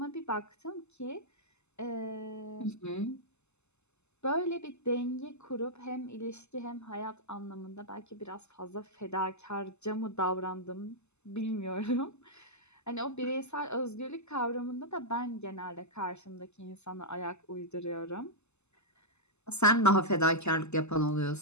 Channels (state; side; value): late; right; 0.81 ms